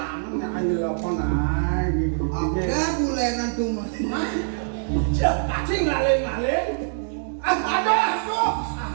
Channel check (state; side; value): silent; left; digital silence